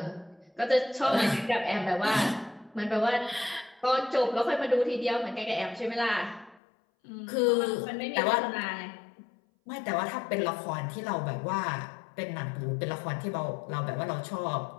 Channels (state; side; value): drops out; right; at 6.6 s